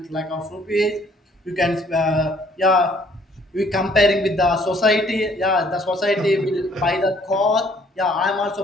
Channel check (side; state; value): both; normal; correlation 0.61